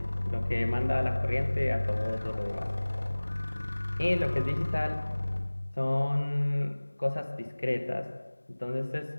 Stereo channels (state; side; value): inverted; both; correlation -1.00